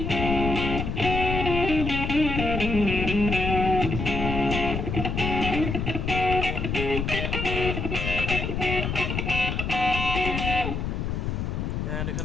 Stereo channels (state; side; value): noise; left; rumble, 2 dB below the sound